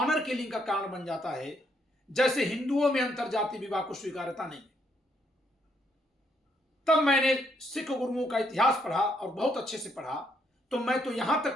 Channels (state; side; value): normal; both; correlation 0.73